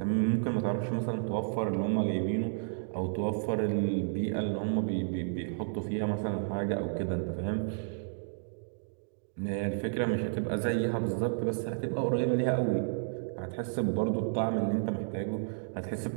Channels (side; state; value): left; silent; digital silence